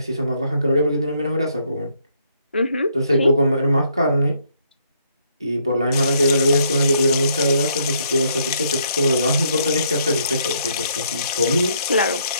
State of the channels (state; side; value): inverted; both; correlation -0.71